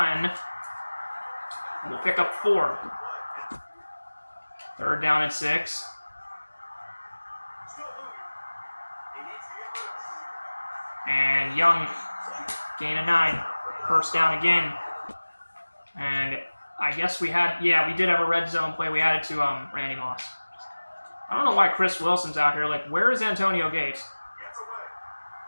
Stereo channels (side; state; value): both; inverted; correlation -1.00